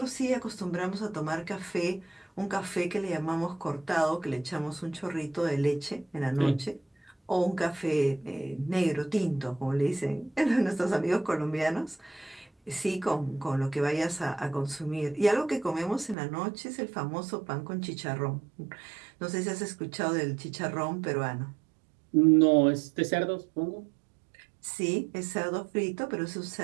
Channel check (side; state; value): left; drops out; at 16.2 s